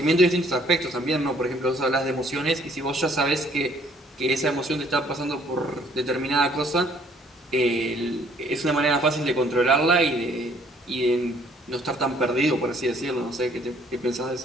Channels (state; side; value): normal; both; correlation 0.61